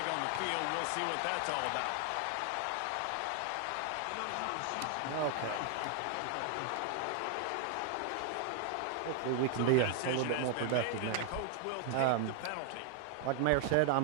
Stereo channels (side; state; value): both; different; correlation 0.00